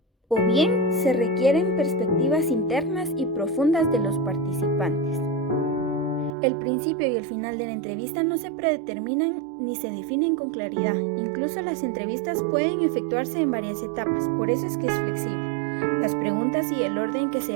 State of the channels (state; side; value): drops out; left; at 6.3 s